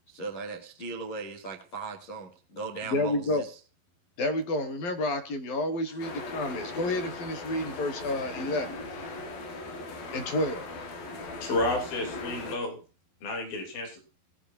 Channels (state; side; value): late; right; 11 ms